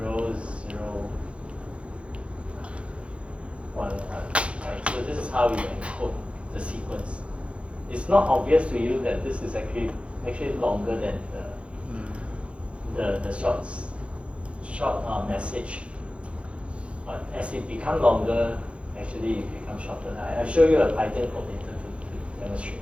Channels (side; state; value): left; late; 0.060 ms